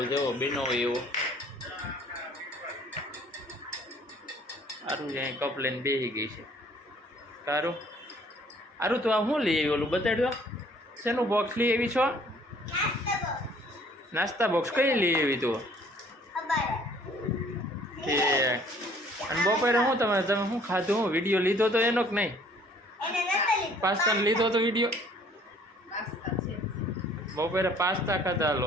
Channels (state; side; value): normal; both; correlation 0.58